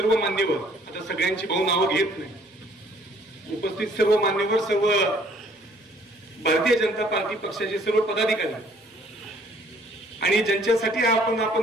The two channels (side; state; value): both; normal; correlation 0.60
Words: मान्यवर, आता सगळ्यांची भाऊ नावं घेत नाही, उपस्थित सर्व मान्यवर, सर्व भारतीय जनता पार्टी पक्षाचे सर्व पदाधिकारी आणि ज्यांच्यासाठी